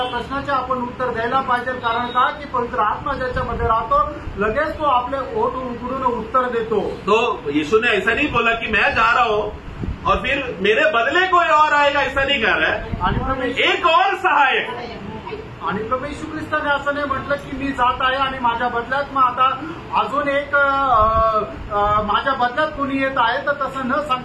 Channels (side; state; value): both; identical; correlation 1.00